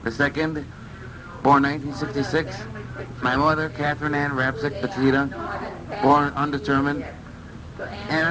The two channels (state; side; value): identical; both; correlation 1.00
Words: the second, born 1966, my mother, Catherine Ann Rapsik Batita, born undetermined.